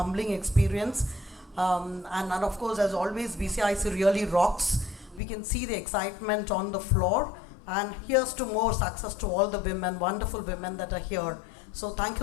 experience. And of course, as always, BCIC really rocks. We can see the excitement on the floor. And here's to more success to all the women, wonderful women that are here. So thank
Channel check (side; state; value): right; drops out; at 5.2 s